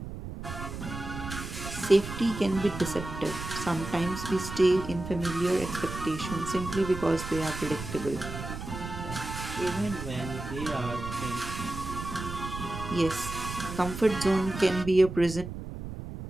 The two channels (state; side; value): noise; right; rumble, 8 dB below the sound